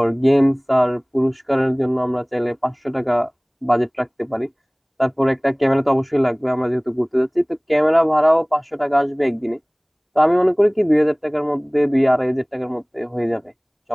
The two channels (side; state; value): both; identical; correlation 1.00